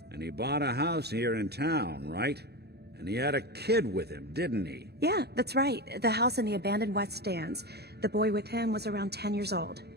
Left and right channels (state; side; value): late; left; 0.48 ms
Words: And he bought a house here in town, right? And he had a kid with him, didn't he? Yeah, that's right. The house in the abandoned West Stands. The boy with him was around 10 years old.